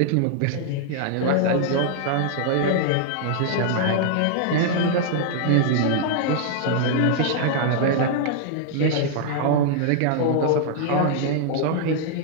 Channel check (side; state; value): both; different; correlation -0.01